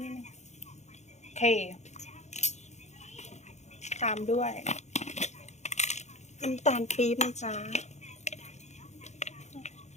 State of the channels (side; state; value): right; late; 0.33 ms